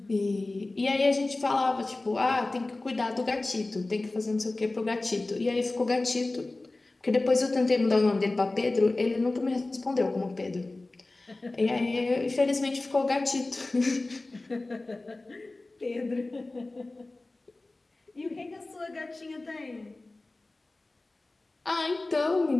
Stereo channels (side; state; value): right; quieter; 3.0 dB